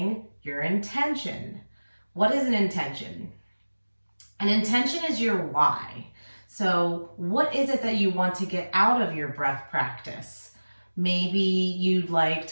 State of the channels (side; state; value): both; inverted; correlation -1.00